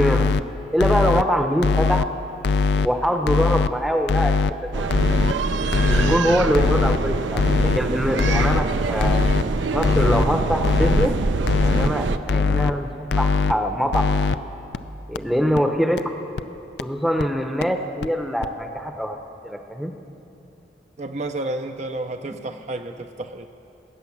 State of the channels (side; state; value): both; normal; correlation 0.76